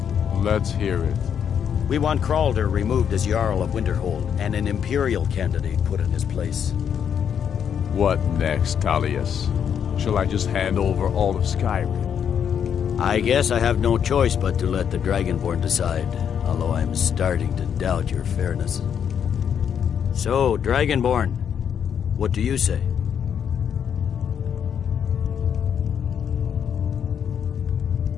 Let's hear it. We want Kralder removed as Jarl of Winterhold and an Imperial candidate put in his place. What next, Tullius? Shall I just hand over all of Skyrim? I guess I have no choice but to let the Dragonborn decide, although I'm starting to doubt your fairness. So, Dragonborn, what do you say?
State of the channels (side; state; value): right; quieter; 8.1 dB